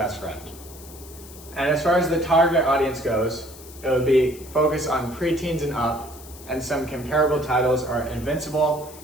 friend. And as far as the target audience goes, it would be focused on preteens and up, and some comparable titles are Invincible,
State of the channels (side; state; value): left; noise; hiss, 18 dB below the sound